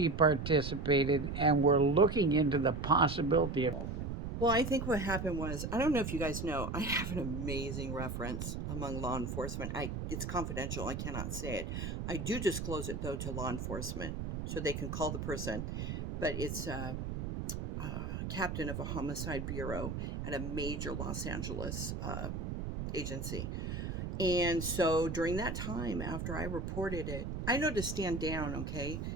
participated, and we're looking into the possibility of involvement." Well, I think what happened was, I don't know if you guys know, I have an amazing reference among law enforcement. It's confidential. I cannot say it. I do disclose it though to law enforcement so they can call the person. But it's captain of a homicide bureau at a major Los Angeles agency. And so during that time, after I reported it, I know to stand down, okay?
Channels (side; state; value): right; noise; rumble, 4 dB below the sound